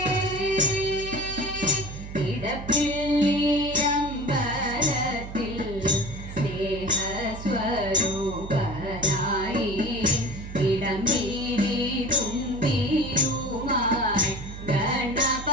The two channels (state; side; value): noise; right; hum, 11 dB below the sound